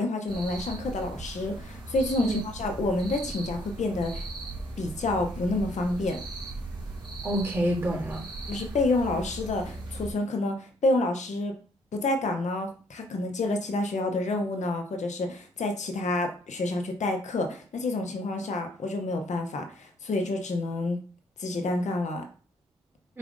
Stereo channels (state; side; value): normal; both; correlation 0.65